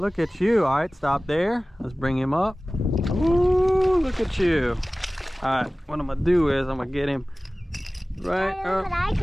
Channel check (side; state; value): both; normal; correlation 0.98